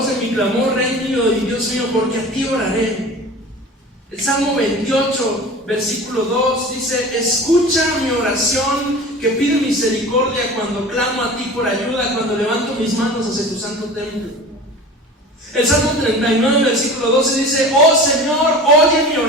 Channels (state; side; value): normal; both; correlation 0.37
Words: de mi clamor, Rey mío y Dios mío, porque a ti oraré. El Salmo 28, versículo 2 dice: escucha mi oración, que pide misericordia cuando clamo a ti por ayuda, cuando levanto mis manos hacia tu santo templo. El Salmo 39, versículo 12 dice: oh Señor, oye mi